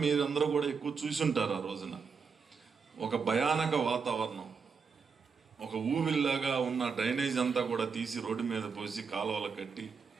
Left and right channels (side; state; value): left; quieter; 5.6 dB